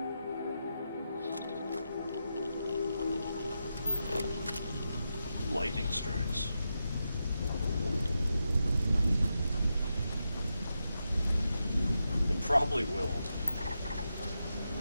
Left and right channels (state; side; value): inverted; both; correlation -0.87